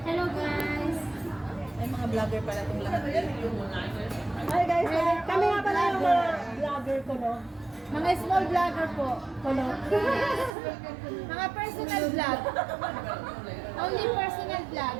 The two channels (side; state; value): left; drops out; at 10.5 s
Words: Hello guys. Ay, mga vlogger pala itong lahat. Hi guys! Kami nga pala yung mga vlogger ko, no? Mga small vlogger po. Kuno. Mga personal vlog. Only personal vlog.